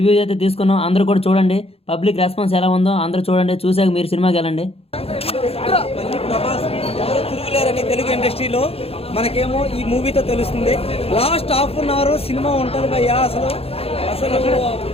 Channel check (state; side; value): late; right; 0.28 ms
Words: అయితే తీసుకున్నాం. అందరూ కూడా చూడండి, పబ్లిక్ రెస్పాన్స్ ఎలా ఉందో అందరూ చూడండి, చూసాక మీరు సినిమాకి వెళ్ళండి. ప్రభాస్ తిరుగులేరని తెలుగు ఇండస్ట్రీలో మనకేమో ఈ మూవీతో తెలుస్తుంది. Last half an hour cinema ఉంటుంది భయ్యా. అసలు అసలు